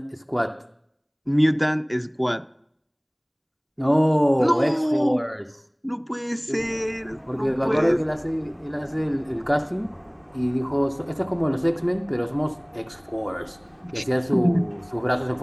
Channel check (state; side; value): identical; both; correlation 1.00